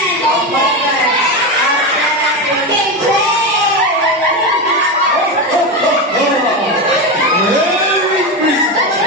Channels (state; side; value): normal; both; correlation 0.16